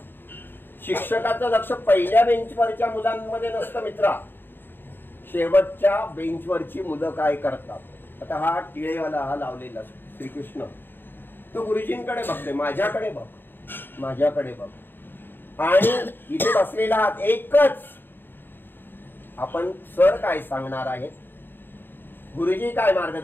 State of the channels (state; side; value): late; right; 0.096 ms